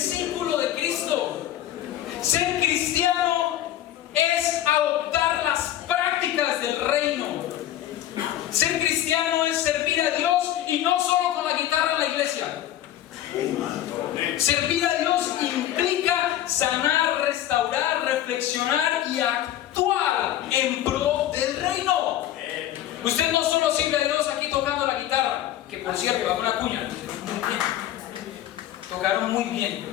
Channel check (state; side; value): quieter; right; 12.5 dB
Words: de Cristo. Ser cristiano es adoptar las prácticas del reino. Ser cristiano es servir a Dios y no solo con la guitarra en la iglesia. Servir a Dios implica sanar, restaurar, reflexionar y actuar en pro del reino. Usted no solo sirve a Dios aquí tocando la guitarra, que por cierto, hago una cuña. Tocaron muy bien,